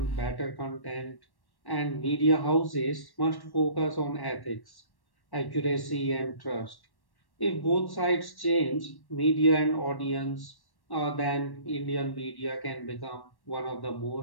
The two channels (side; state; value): right; late; 1.1 ms